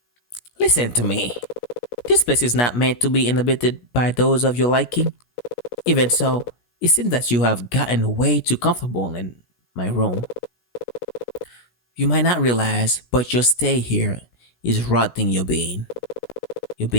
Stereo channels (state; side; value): late; right; 17 ms